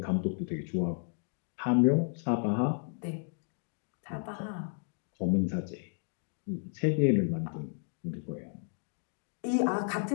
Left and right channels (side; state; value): right; silent; 56 dB below the other